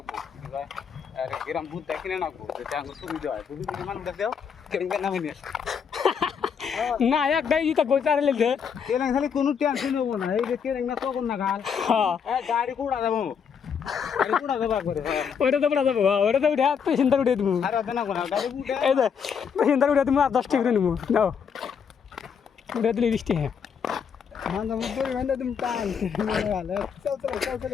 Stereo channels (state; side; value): quieter; right; 7.0 dB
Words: গ্রাম ভূত কিনে নাকবো সুবিধা হয় বুঝলি মানুষ দেখো নামে নিয়ে না একটাই ইটা কই চারে লেছে কেন খালি কোনো টেনশন হবো না এই যে কেন না তখন না গাল গাড়ি কুড়া যাবো গাড়ি কুড়া যাবো করে ওইটা তো পড়া যাবো ওইটা তো উঠে পেশেন্টার উঠে দিব আর হবে না কোনা গাড়ি উঠে এই যে পেশেন্টার উঠে তুমি আর 10 টাকা করে নিব নাও উঠে দিলে 20 টাকা মান্দা মুদরি মান্দা তুমি টান চল